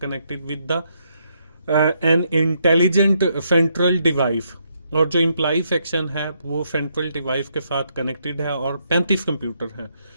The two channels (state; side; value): inverted; both; correlation -0.76